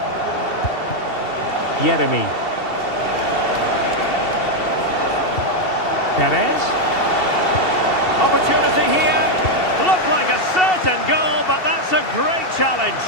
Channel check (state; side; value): late; right; 2.7 ms